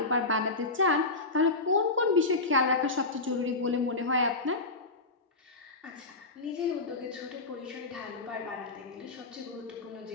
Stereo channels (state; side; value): quieter; right; 3.4 dB